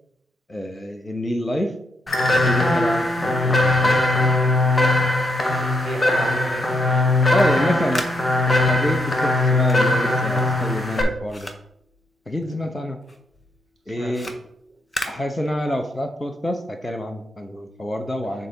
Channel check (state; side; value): normal; both; correlation 0.78